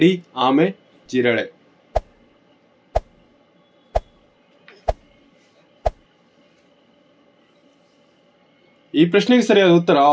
ಆಮೆ, ಜಿರಳೆ. ಈ ಪ್ರಶ್ನೆಗೆ ಸರಿಯಾದ ಉತ್ತರ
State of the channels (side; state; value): both; identical; correlation 1.00